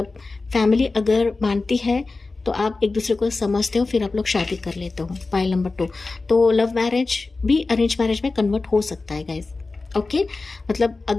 फैमिली अगर मानती है तो आप एक दूसरे को समझते हो, फिर आप लोग शादी कर लेते हो। पाइल नंबर 2, तो लव मैरिज भी अरेंज मैरिज में कन्वर्ट हो सकता है गाइज। ओके, मतलब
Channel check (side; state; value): right; quieter; 3.7 dB